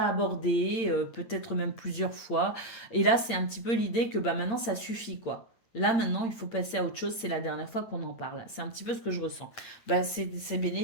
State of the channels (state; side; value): late; right; 8.7 ms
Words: abordé, peut-être même plusieurs fois. Et là, c'est un petit peu l'idée que maintenant, ça suffit, quoi. Là, maintenant, il faut passer à autre chose. C'est la dernière fois qu'on en parle. C'est un petit peu ce que je ressens. C'est